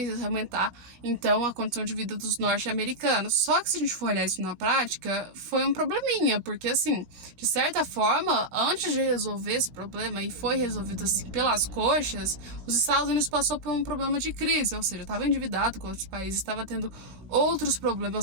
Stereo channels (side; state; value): left; late; 16 ms